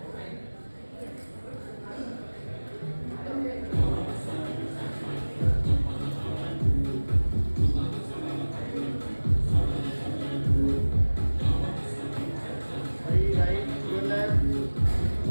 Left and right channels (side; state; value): both; inverted; correlation -1.00